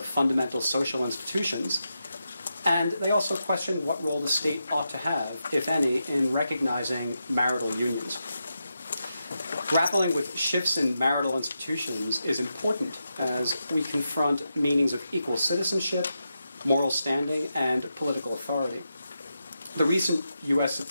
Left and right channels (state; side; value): inverted; both; correlation -0.87